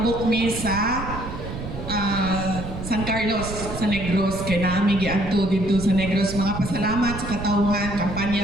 mi sa San Carlos sa Negros kay naami giadto dito sa Negros. Mga pasalamat sa katawhan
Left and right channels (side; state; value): right; noise; rumble, 8 dB below the sound